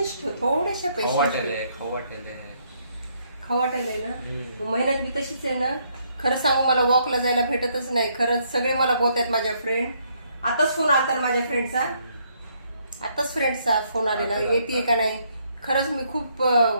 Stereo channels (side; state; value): both; inverted; correlation -0.71